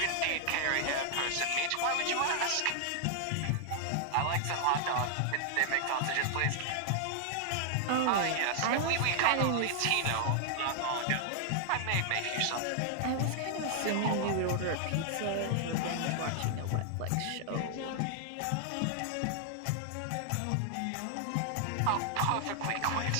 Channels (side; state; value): both; different; correlation -0.01